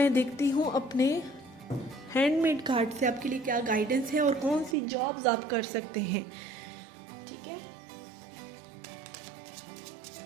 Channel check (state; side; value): drops out; left; at 4.8 s